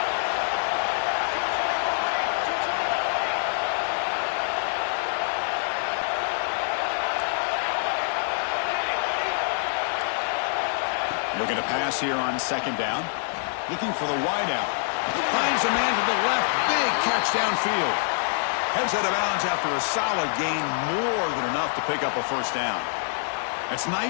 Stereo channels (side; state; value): right; silent; 61 dB below the other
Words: Looking to pass here on 2nd down. Looking for the wideout. He finds a man to the left. Big catch downfield. Heads out of bounds after a solid gain, more than enough to pick up a first down. It's